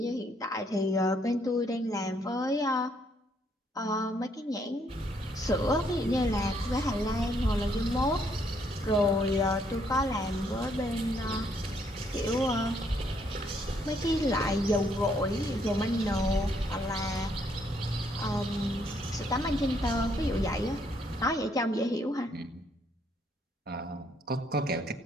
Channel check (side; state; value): both; normal; correlation 0.70